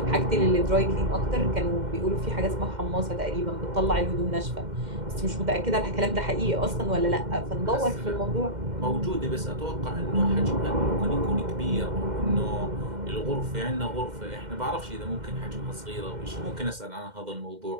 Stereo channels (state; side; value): late; left; 2.1 ms